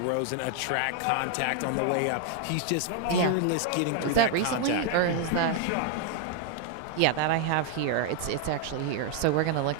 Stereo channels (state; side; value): different; both; correlation 0.00